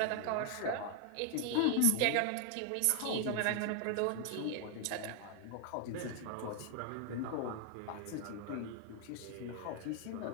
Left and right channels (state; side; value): different; both; correlation -0.01